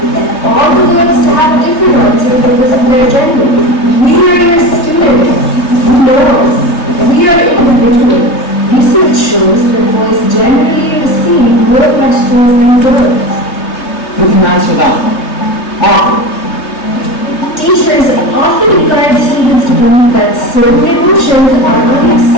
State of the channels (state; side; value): late; right; 3.2 ms